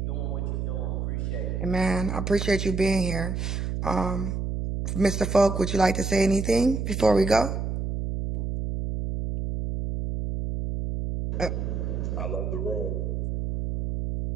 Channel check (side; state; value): right; noise; hum, 2 dB below the sound